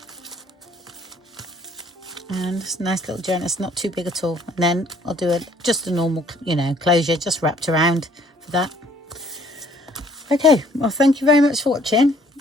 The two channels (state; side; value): normal; both; correlation 0.60